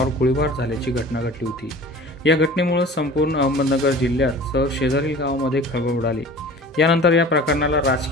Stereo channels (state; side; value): normal; both; correlation 0.42